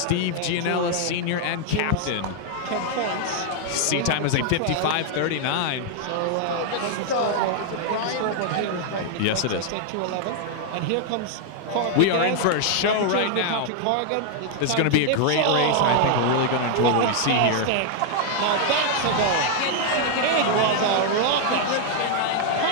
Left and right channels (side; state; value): both; different; correlation 0.00